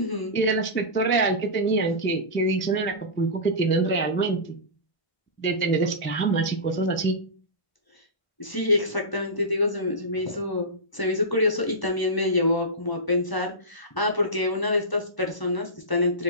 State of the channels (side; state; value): right; late; 1.0 ms